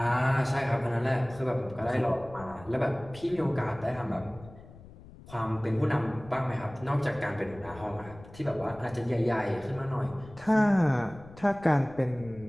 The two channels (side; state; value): left; noise; rumble, 19 dB below the sound